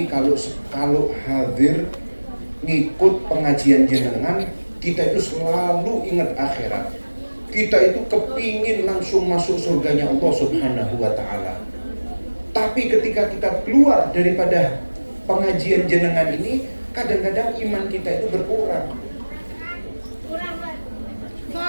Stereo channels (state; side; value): inverted; both; correlation -1.00